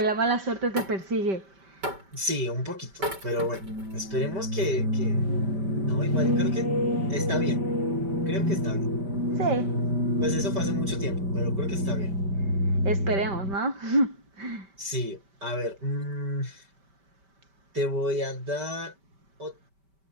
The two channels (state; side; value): late; left; 5.1 ms